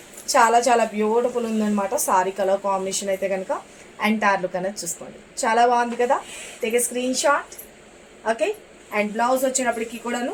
చాలా బ్యూటిఫుల్ ఉందన్నమాట. సారీ కలర్ కాంబినేషన్ అయితే కనుక ఎంటైర్ లుక్ అనేది చూసుకోండి, చాలా బాగుంది కదా. Take a screenshot. Okay, and blouse వచ్చినప్పటికీ కూడాను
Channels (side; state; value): both; identical; correlation 1.00